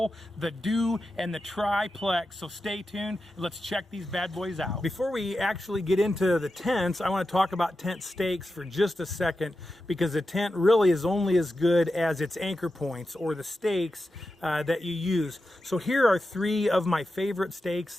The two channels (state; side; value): normal; both; correlation 0.91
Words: the Du, and the Triplex. So stay tuned and let's check these bad boys out. Before we actually get into the tents, I want to talk about tent stakes for just a second, because the tent really is only as good as its anchor points, or the stakes that you use. So here are 3 of my favorite stakes